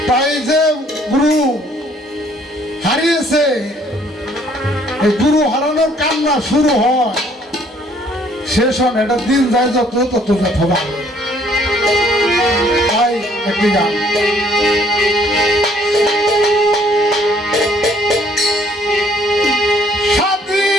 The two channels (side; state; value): both; normal; correlation 0.62